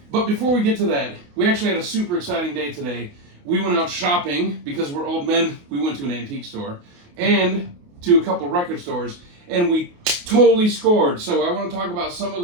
before we get to that, we actually had a super exciting day today. We went out shopping because we're old men. We went to an antique store and to a couple record stores, and we totally scored. So I want to talk about some of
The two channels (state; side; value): late; left; 28 ms